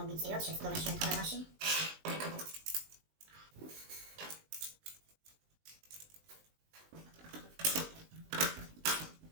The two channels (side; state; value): left; late; 19 ms